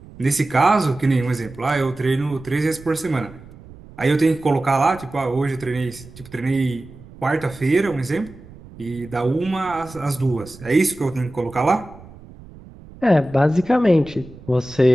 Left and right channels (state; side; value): noise; right; rumble, 19 dB below the sound